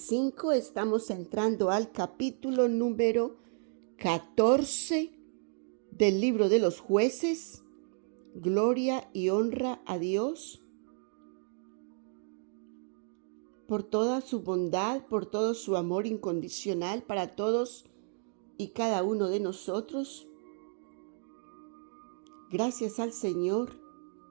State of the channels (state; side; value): silent; left; 56 dB below the other